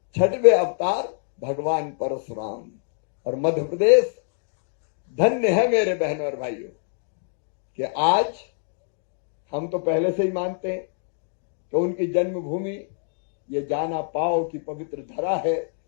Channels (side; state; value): right; silent; digital silence